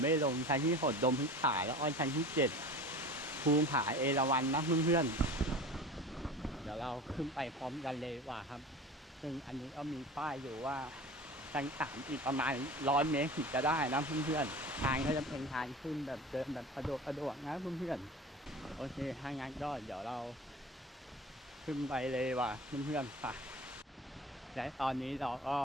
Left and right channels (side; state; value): both; normal; correlation 0.36